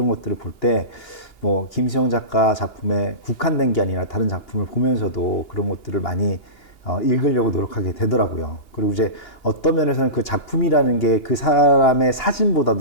것들을 볼 때 뭐 김시영 작가 작품에 국한된 게 아니라 다른 작품을 보면서도 그런 것들을 많이 읽으려고 노력하게 되더라고요. 그리고 이제 어떤 면에서는 그 작품이라는 게 그 사람의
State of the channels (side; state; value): right; late; 2.8 ms